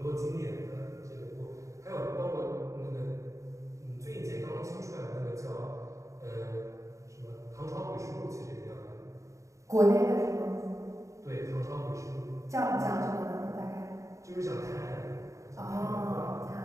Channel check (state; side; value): late; left; 0.15 ms